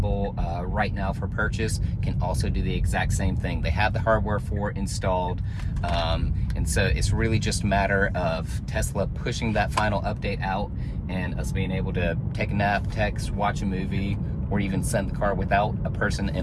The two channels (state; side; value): identical; both; correlation 1.00